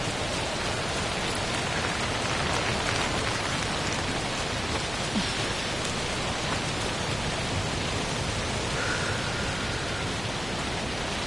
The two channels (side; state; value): right; noise; hum, 13 dB below the sound